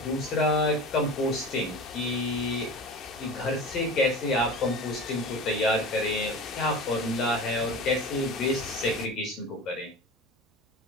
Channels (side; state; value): both; normal; correlation 0.33